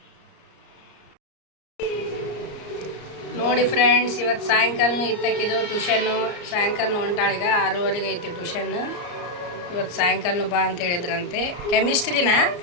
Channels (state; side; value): late; right; 34 ms